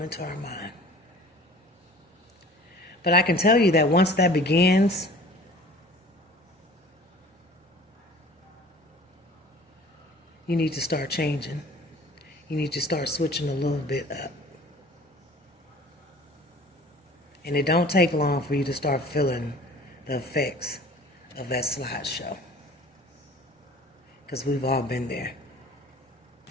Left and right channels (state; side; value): normal; both; correlation 0.46